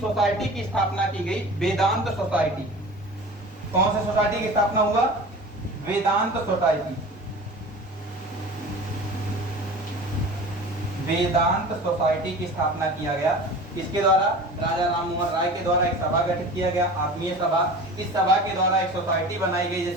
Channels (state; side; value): normal; both; correlation 0.37